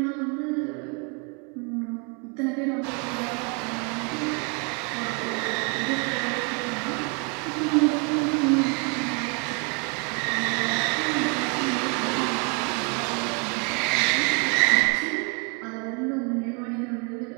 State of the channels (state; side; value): quieter; left; 35.5 dB